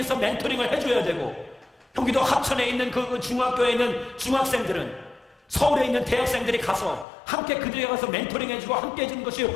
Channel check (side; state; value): right; drops out; at 7.1 s